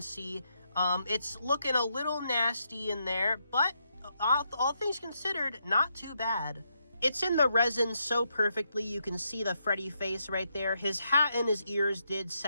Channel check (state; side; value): inverted; both; correlation -0.80